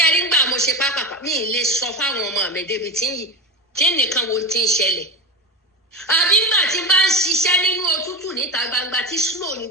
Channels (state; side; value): normal; both; correlation 0.23